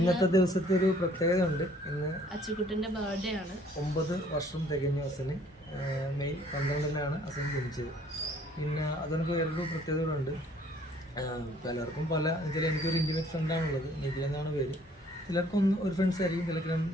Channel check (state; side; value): normal; both; correlation 0.59